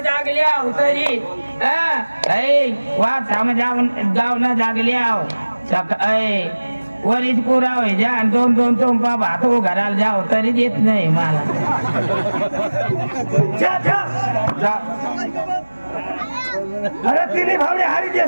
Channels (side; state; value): both; inverted; correlation -1.00